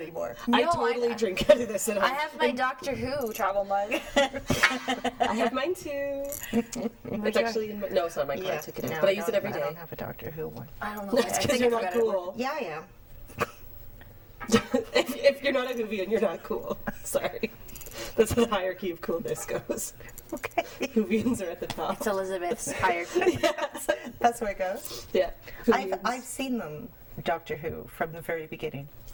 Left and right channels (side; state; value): both; identical; correlation 1.00